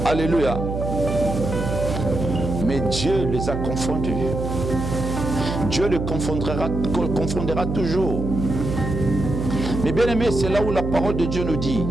alléluia, mais Dieu les a confondus. Dieu les confondera toujours. Mais bien aimé, c'est là où la parole de Dieu nous dit,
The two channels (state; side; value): noise; right; hum, 4 dB below the sound